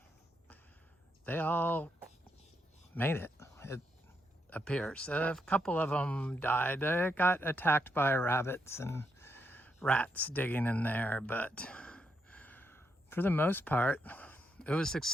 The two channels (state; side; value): normal; both; correlation 0.80